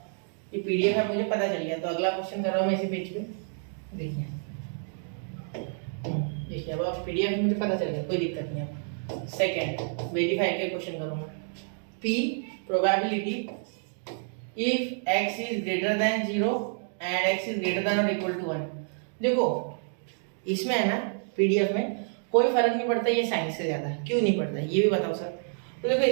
ये पीडीएफ है मुझे पता चल गया, तो अगला क्वेश्चन कर रहा हूँ मैं इसी पेज पे, देखिए देखिए, अब पीडीएफ मुझे पता चल गया, कोई दिक्कत नहीं है। सेकंड वेरीफाई के क्वेश्चन करूँगा, p probability if x is greater then 0 and x is greater then और इक्वल टू 1। देखो इसमें है ना पीडीएफ में कोई फर्क नहीं पड़ता ये साइंस से ज्यादा, क्यों नहीं पड़ता ये भी बताओ सर। तो देखो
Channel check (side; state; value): left; silent; 59 dB below the other